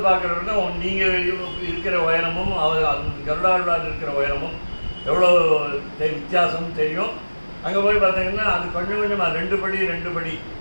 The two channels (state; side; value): inverted; both; correlation -1.00